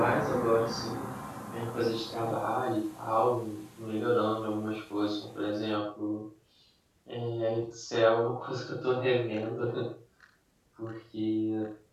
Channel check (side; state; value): both; identical; correlation 1.00